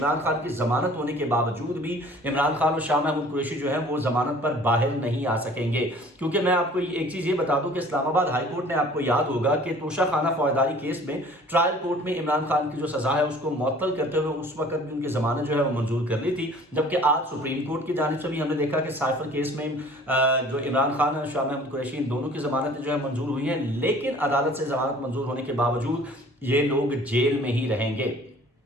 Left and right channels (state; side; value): normal; both; correlation 0.50